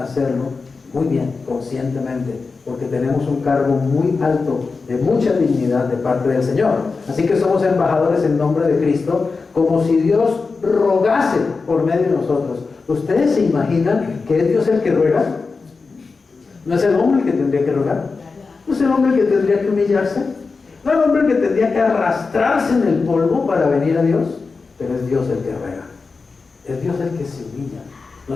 muy bien, conscientemente, porque tenemos un cargo muy alto, de mucha dignidad de parte del Señor. Así que somos embajadores en nombre de Cristo, como si Dios rogase por medio de nosotros. ¿Ustedes se imaginan que es Dios el que ruega? ¿No es el hombre el que tendría que rogar? ¿No es el hombre el que tendría que humillarse? ¿No es el hombre el que tendría que arrastrarse en el polvo para venir a Dios? Pero es Dios el que ruega. Es Dios el que se humilla.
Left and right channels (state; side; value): quieter; right; 4.4 dB